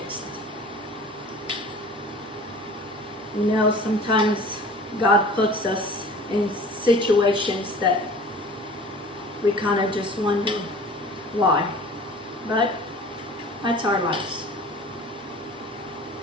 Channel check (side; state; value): both; normal; correlation 0.43